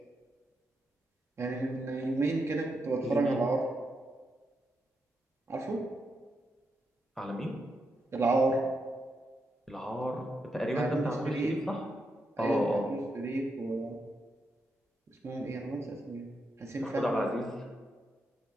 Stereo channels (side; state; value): both; normal; correlation 0.83